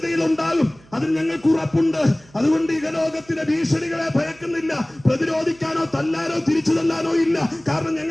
ഉണ്ടാകും, അതിന് ഞങ്ങൾക്ക് ഉറപ്പുണ്ട്. അതുകൊണ്ട് ഈ ലോകത്തിലെ ഭീഷണികളെ ഭയക്കുന്നില്ല. പ്രതിരോധിക്കാനോ തല്ലാനോ തിരിച്ചു തല്ലാനോ ഇല്ല. കാരണം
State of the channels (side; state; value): right; noise; hum, 27 dB below the sound